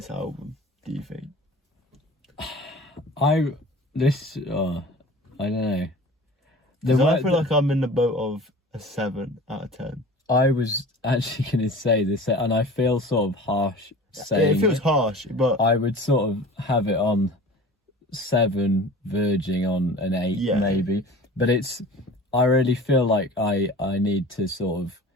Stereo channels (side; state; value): both; normal; correlation 0.40